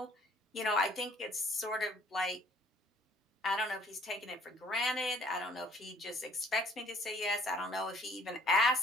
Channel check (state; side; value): normal; both; correlation 0.58